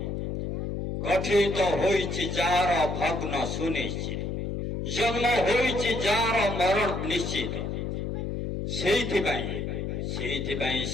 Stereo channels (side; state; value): left; noise; hum, 3 dB below the sound